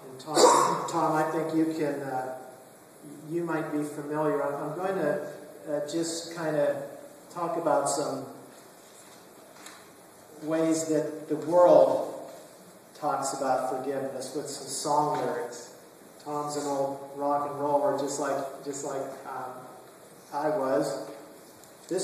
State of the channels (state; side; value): identical; both; correlation 1.00